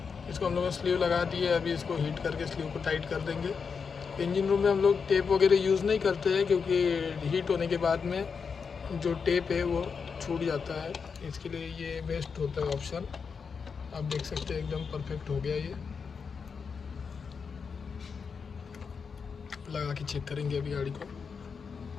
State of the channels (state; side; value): quieter; right; 5.7 dB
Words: इसको हम लोगों ने स्लीव लगा दी है, अभी इसको हीट करके स्लीव को टाइट कर देंगे। इंजन रूम में हम लोग टेप वगैरह यूज़ नहीं करते हैं, क्योंकि हीट होने के बाद में जो टेप है वो छूट जाता है। इसके लिए ये बेस्ट होता है ऑप्शन। आप देख सकते हैं एकदम परफेक्ट हो गया। ये लगा के चेक करेंगे अभी गाड़ी को।